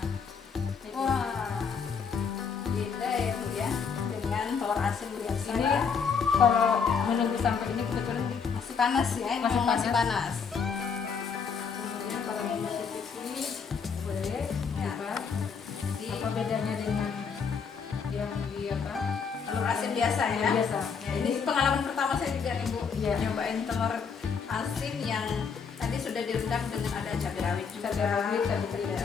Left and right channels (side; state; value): right; quieter; 6.0 dB